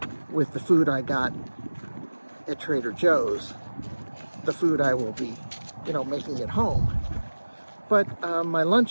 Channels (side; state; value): both; inverted; correlation -1.00